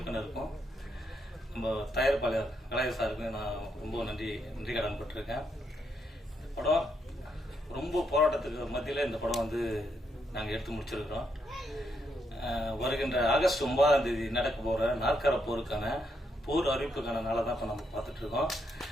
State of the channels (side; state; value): both; normal; correlation 0.78